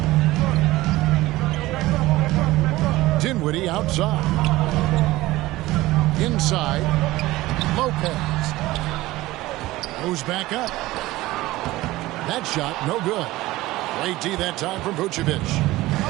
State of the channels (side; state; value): left; quieter; 18.0 dB